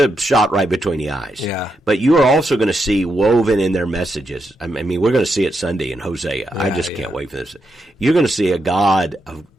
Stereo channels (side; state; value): both; normal; correlation 0.83